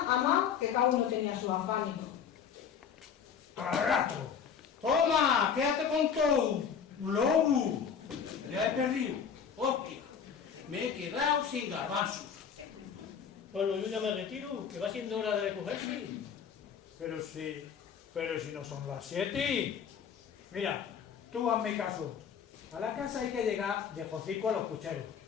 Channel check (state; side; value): quieter; right; 7.3 dB